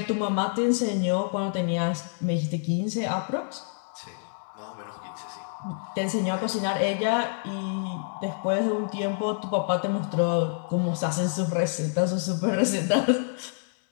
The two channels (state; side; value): silent; right; digital silence